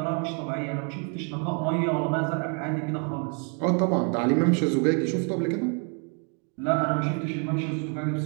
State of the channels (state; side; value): quieter; left; 39.3 dB